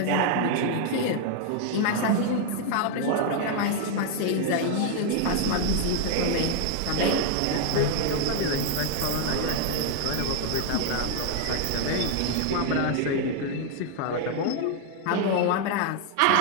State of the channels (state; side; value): different; both; correlation 0.00